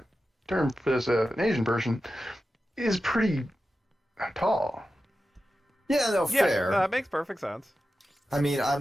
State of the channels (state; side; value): normal; both; correlation 0.92